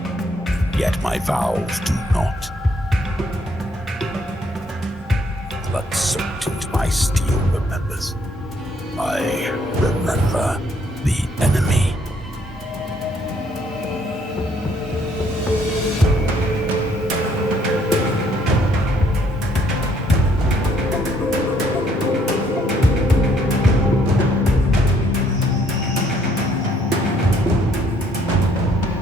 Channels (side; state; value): both; normal; correlation 0.67